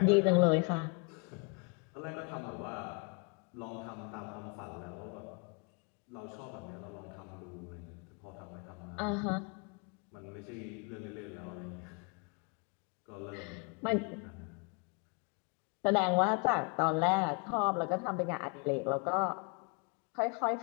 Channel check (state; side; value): quieter; right; 33.5 dB